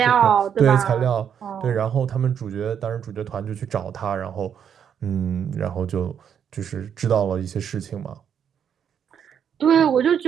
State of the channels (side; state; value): left; quieter; 8.3 dB